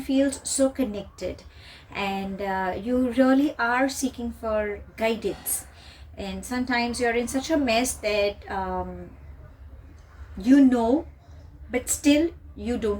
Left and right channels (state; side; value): identical; both; correlation 1.00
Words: so connected, and you really are seeking for guidance, and sometimes you're in such a mess that but still you